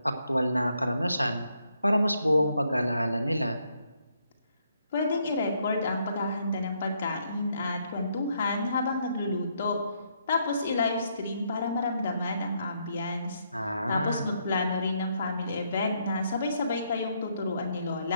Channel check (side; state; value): both; inverted; correlation -0.74